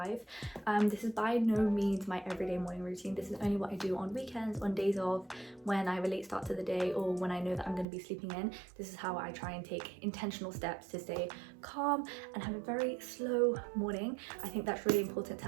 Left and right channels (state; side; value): drops out; left; at 7.9 s